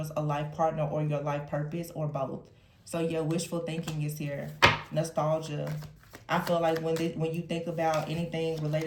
a life partner or your life purpose or both. So yeah, wishful thinking is here. Nostalgia. I feel like when you think about anything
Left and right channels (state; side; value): identical; both; correlation 1.00